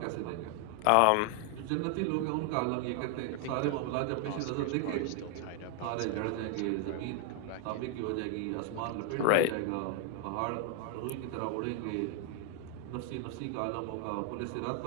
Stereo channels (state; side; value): different; both; correlation 0.00